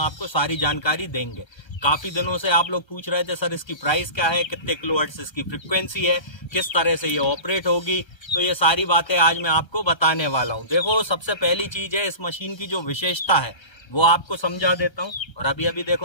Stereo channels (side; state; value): right; late; 1.3 ms